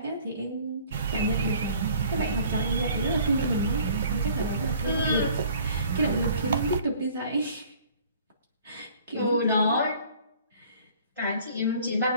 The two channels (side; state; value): both; inverted; correlation -0.53